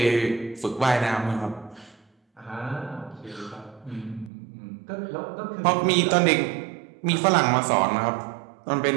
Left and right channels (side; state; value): left; drops out; at 4.3 s